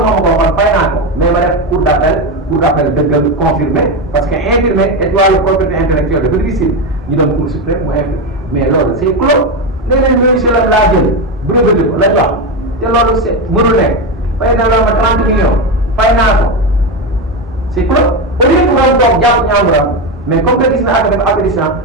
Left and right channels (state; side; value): normal; both; correlation 0.13